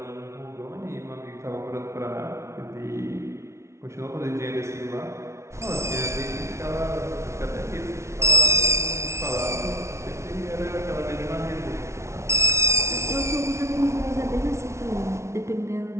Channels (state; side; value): late; left; 0.13 ms